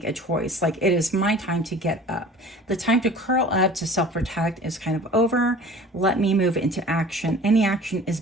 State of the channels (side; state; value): both; normal; correlation 0.44